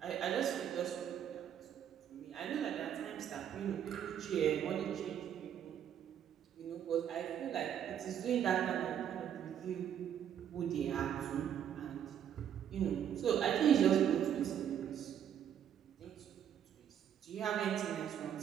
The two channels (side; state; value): left; quieter; 9.4 dB